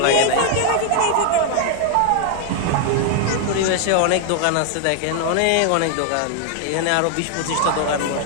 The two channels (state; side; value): different; both; correlation 0.00